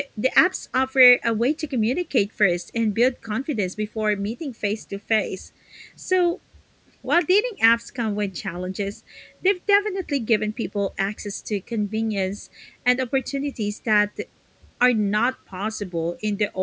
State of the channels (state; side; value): identical; both; correlation 1.00